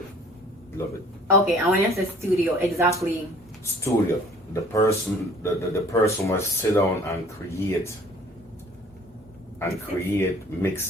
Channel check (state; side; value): normal; both; correlation 0.53